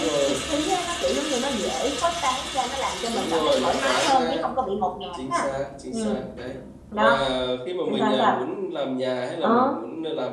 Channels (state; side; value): identical; both; correlation 1.00